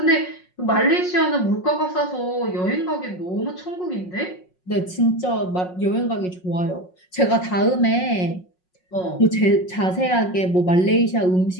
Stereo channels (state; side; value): late; right; 5.5 ms